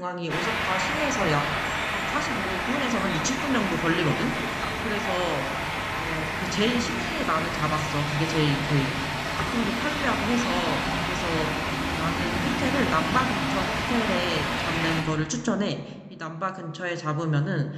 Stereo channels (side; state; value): both; identical; correlation 1.00